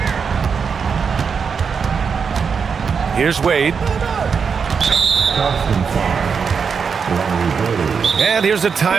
Here's Wade. And here's a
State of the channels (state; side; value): quieter; left; 6.0 dB